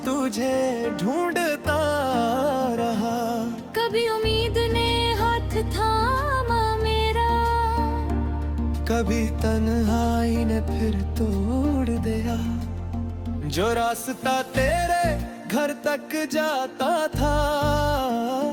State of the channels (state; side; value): identical; both; correlation 1.00